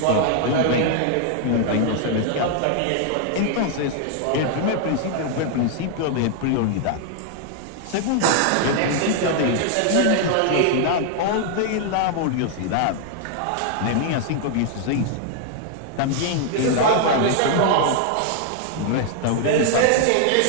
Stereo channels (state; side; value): different; both; correlation 0.00